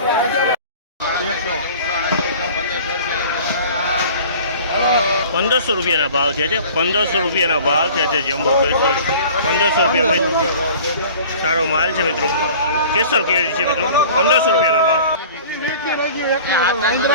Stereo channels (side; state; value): both; inverted; correlation -0.44